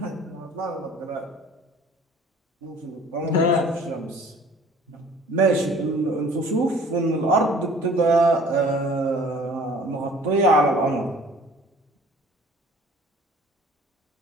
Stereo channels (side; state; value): both; normal; correlation 0.50